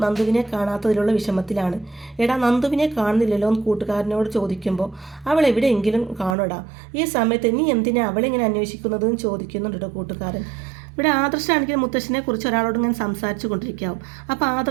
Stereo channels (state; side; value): drops out; left; at 6.4 s